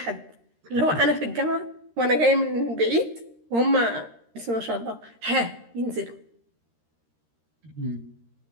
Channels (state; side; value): late; left; 13 ms